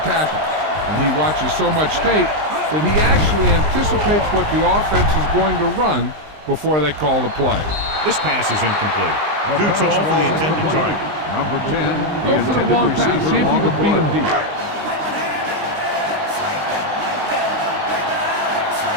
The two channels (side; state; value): left; late; 19 ms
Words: tackle, and he watches so much tape that he actually anticipates what the offense is going to run before they call the play. This pass is incomplete. Too tall for the intended target. Number 10. Go for the long pass. See if you can beat him deep.